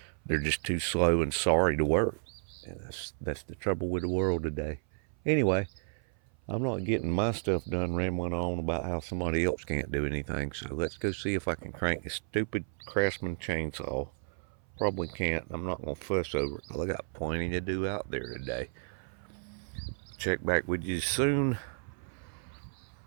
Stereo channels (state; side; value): silent; left; 56 dB below the other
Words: they're just too slow and sorry to work. And that's the trouble with the world today. Anyway, I'm not getting my stuff done rambling on about how somebody else can't do anything. So let's go see if I can crank this stupid Craftsman chainsaw. Probably can't. I'm not going to fuss over it. I got plenty to do out there today. Check back with you soon.